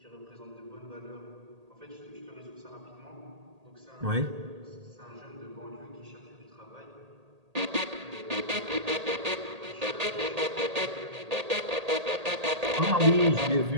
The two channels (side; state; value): left; late; 1.8 ms